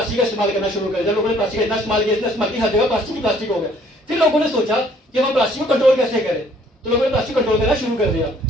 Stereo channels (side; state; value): both; normal; correlation 0.60